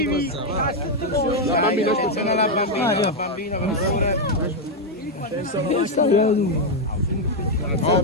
La bambina, aspetta la bambina.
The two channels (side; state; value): both; normal; correlation 0.02